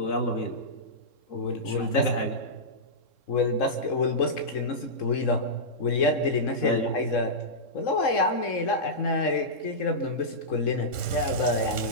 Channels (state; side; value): late; right; 3.7 ms